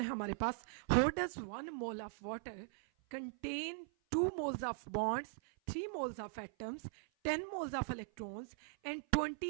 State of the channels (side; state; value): left; silent; 51 dB below the other